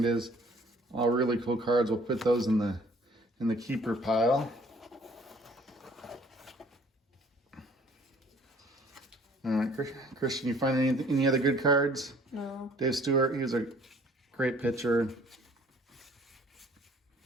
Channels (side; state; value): both; normal; correlation 0.55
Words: All really cool cards. We'll put those in the keeper pile. All right, Christian, you find any other good cards? No. Dave Stewart, he was a great pitcher.